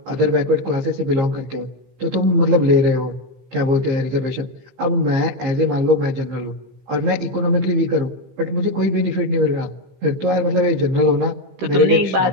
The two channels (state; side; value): late; left; 15 ms